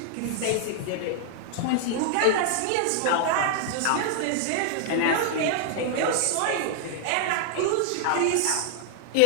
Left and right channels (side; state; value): both; different; correlation 0.00